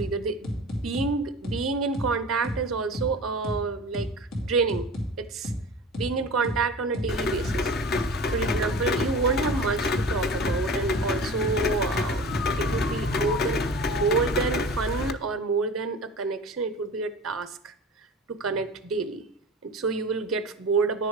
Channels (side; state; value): both; normal; correlation 0.36